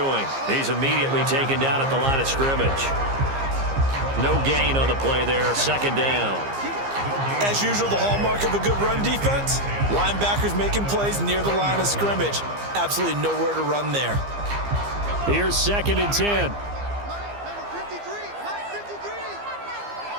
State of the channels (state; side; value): late; left; 15 ms